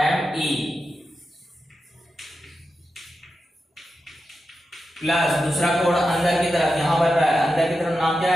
एम ई प्लस दूसरा कोण अंदर की तरफ यहां बन रहा है, अंदर की तरफ नाम क्या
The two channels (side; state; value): both; normal; correlation 0.90